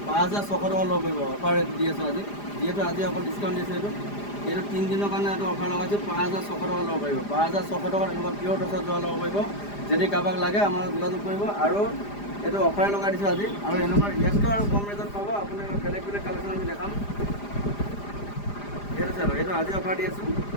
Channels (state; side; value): late; right; 4.9 ms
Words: 5,600 টকা ল'ব পাৰিব। অফাৰ ৰেট দি আছোঁ আজি, যিহেতু আজি অকল ডিছকাউণ্ট দিছোঁ। এইটো 3 দিনৰ কাৰণে এইটো অফাৰ লগাইছোঁ। 5,600 টকা ল'ব পাৰিব, 5,600 টকাত এনেকুৱা পিয়ৰ টচৰ যোৰা ল'ব পাৰিব। যদি কাৰোবাক লাগে আমাৰ যোগাযোগ কৰিব। আৰু এইটো অফাৰে লগাই দিছোঁ আজি, আৰু এনেকুৱা ইয়াতকৈ আৰু কম ৰেটত পাব। আপুনি বেলেগ বেলেগ কালেকশ্যন আমি দেখাম। এইটো চাব, এইটো আজি অফাৰ দি আছোঁ